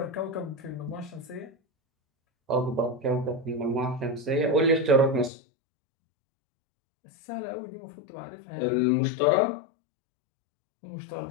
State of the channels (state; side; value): drops out; right; at 5.3 s